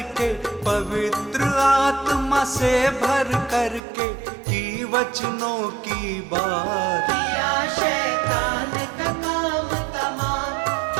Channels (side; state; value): left; drops out; at 3.8 s